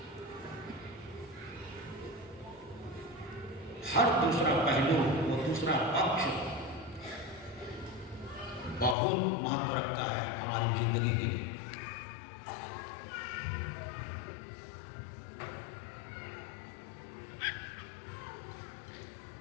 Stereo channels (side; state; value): right; drops out; at 9.0 s